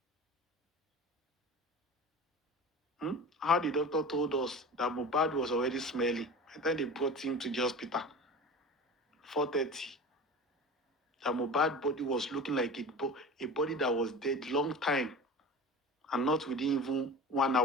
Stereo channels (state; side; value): normal; both; correlation 0.34